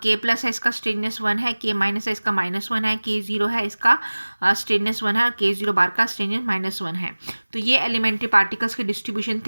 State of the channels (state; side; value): inverted; both; correlation -1.00